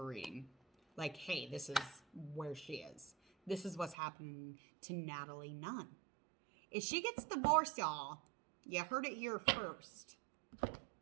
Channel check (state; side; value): drops out; left; at 4.0 s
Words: reading. Like, hey, this is where she is. This is what's happening to Natalie Nunn. If she gets divorced, y'all, you heard it here first.